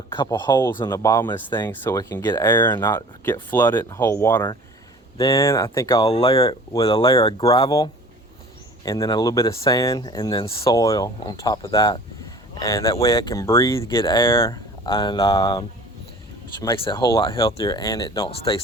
couple holes in the bottom of this thing so it can get air and not get flooded and hold water. Then I think I'll layer it with a layer of gravel and then a little bit of sand and then soil on top of that. And that way it can breathe, get air, and which makes it a whole lot healthier and it don't stay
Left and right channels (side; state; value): both; normal; correlation 0.45